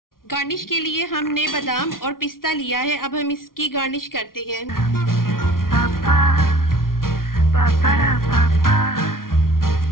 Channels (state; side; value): late; right; 0.92 ms